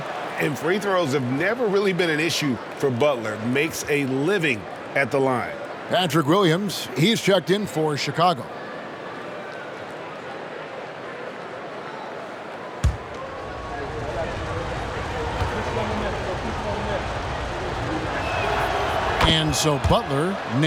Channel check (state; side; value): identical; both; correlation 1.00